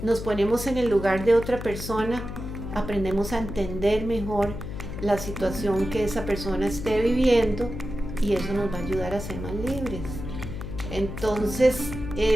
nos ponemos en el lugar de otra persona, aprendemos a entender mejor la situación que esa persona esté viviendo y eso nos va a ayudar a ser más libres. Entonces,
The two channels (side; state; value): left; noise; hum, 8 dB below the sound